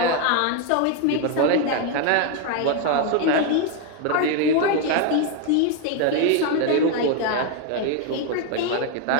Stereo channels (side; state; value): both; different; correlation 0.01